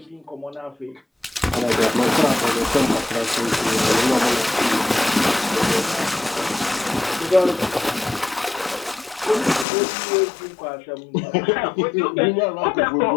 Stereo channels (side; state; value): right; drops out; at 9.7 s